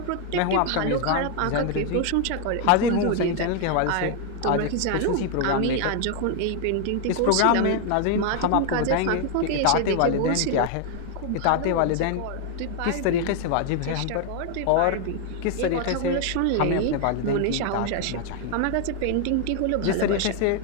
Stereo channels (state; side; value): different; both; correlation 0.00